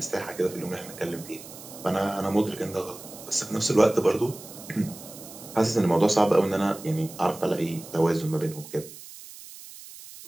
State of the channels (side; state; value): right; noise; hiss, 16 dB below the sound